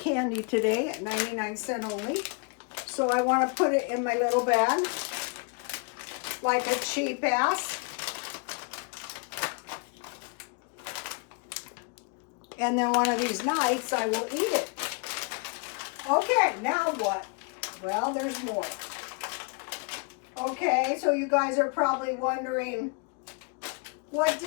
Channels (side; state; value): right; quieter; 33.9 dB